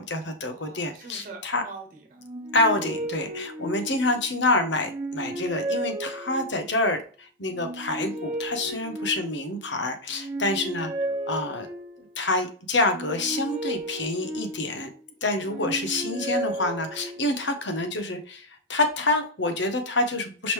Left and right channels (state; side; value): normal; both; correlation 0.00